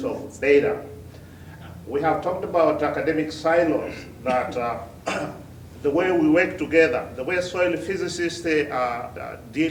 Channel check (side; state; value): both; identical; correlation 1.00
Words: of data. We have talked about academic silos, that the way we work together, the way soil physicists